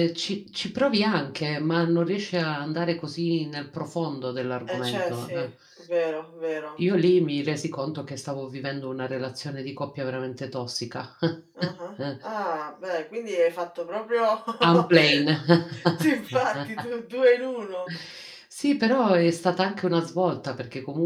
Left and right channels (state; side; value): identical; both; correlation 1.00